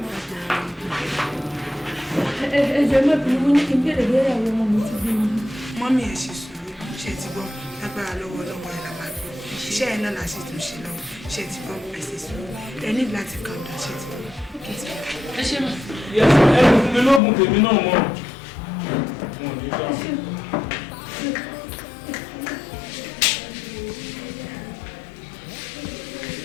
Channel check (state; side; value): drops out; right; at 17.2 s